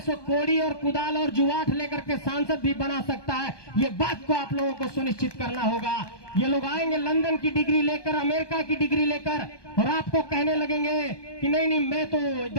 सो कोड़ी और कुदाल और जुआठ लेकर के सांसद भी बना सकता है। ये बात को आप लोगों को सुनिश्चित करना होगा। ये लोग आएंगे लंदन की डिग्री लेकर, अमेरिका की डिग्री लेकर, और आपको कहने लगेंगे कि नहीं नहीं, मैं तो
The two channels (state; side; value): late; right; 1.2 ms